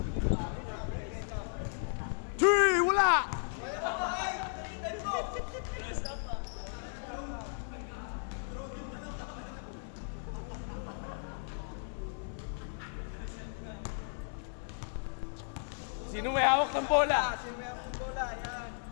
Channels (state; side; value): silent; right; 54 dB below the other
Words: 3, wala! Sino may hawak ng bola? Sino may ang bola? Yan.